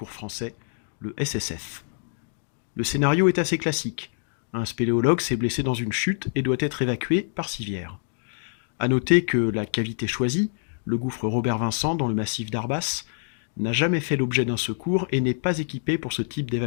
Français, le SSF. Le scénario est assez classique. Un spéléologue s'est blessé dans une chute et doit être évacué par civière. À noter que la cavité choisie, le gouffre Robert-Vincent dans le massif d'Arbas, n'a jamais fait l'objet d'un secours et n'est pas équipé pour ce type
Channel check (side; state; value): right; silent; digital silence